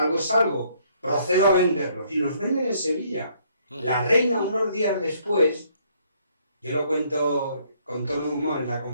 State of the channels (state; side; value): inverted; both; correlation -0.66